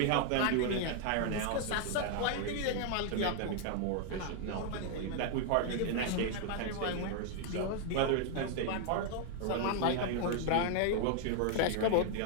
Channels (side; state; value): both; different; correlation 0.00